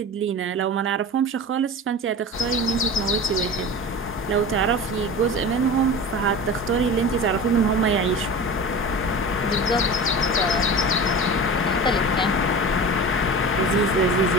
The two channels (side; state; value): both; normal; correlation 0.32